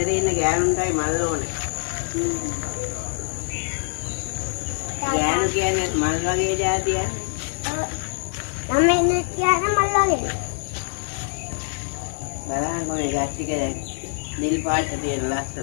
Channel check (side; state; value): right; silent; digital silence